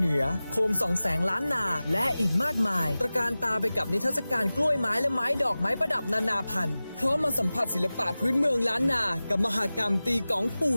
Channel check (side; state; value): both; inverted; correlation -0.97